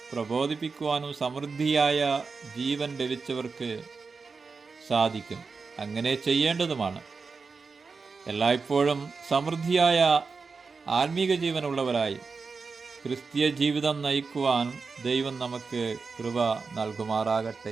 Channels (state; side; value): quieter; left; 4.7 dB